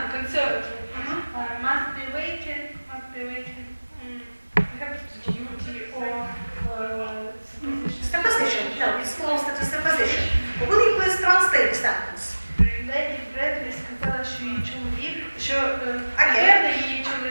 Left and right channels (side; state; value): both; inverted; correlation -1.00